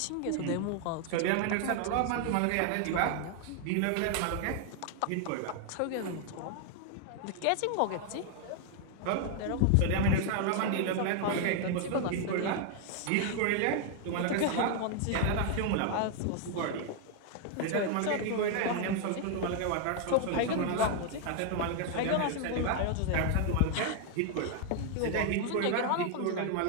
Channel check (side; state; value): both; different; correlation 0.00